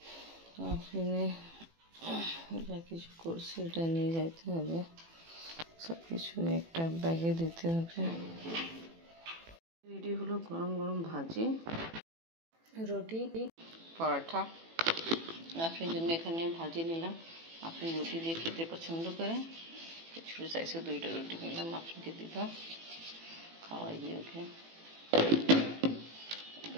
তো আফরিনে যা কিছু করছে এটা নিয়ে যাইতে হবে, সব কিছু একটা ব্যাগে দিতে হবে। এটি হলো গরম গরম ভাজি, রুটি, পরোটা। আপনার জন্য এখানে ভাজি নিলাম। আপনি রুটি দিয়ে খেতে পছন্দ করেন, ছোটো সাইজে 2টা রুটি নিলাম, আপনাকে দিলাম, খাওয়াই দিয়ে ওকে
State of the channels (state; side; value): late; left; 18 ms